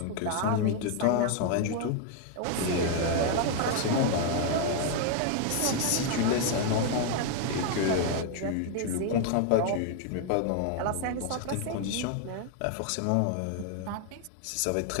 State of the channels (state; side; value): different; both; correlation 0.00